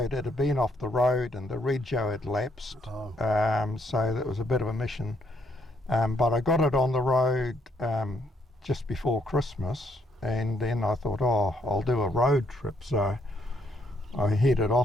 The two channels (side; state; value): both; normal; correlation 0.72